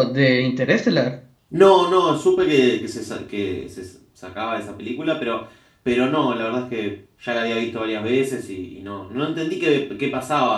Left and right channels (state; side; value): identical; both; correlation 1.00